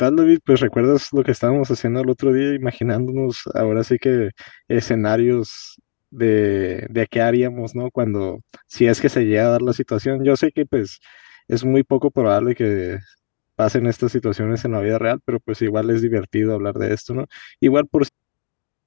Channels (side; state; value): right; silent; digital silence